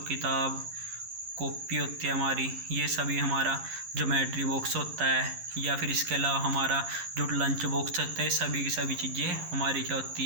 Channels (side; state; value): left; late; 11 ms